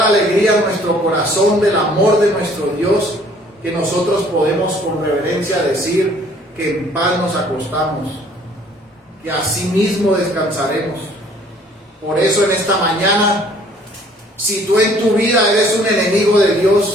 alegría en nuestro corazón del amor de nuestro Dios, que nosotros podemos con reverencia decir que en paz nos acostamos, que así mismo descansaremos. Por eso en esta mañana, si tú en tu vida eres un enemigo de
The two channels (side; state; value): both; normal; correlation 0.57